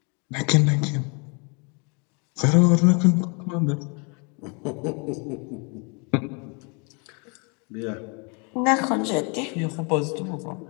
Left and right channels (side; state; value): right; quieter; 34.0 dB